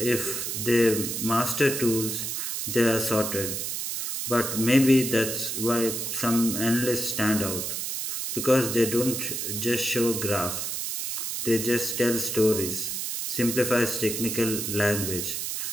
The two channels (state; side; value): noise; right; hiss, 3 dB below the sound